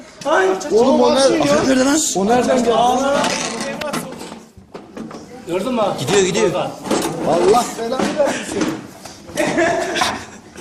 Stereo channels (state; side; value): identical; both; correlation 1.00